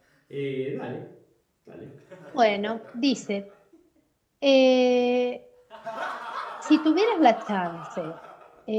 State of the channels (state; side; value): identical; both; correlation 1.00